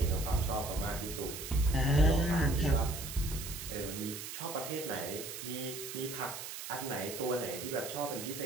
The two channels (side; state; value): right; noise; hiss, 8 dB below the sound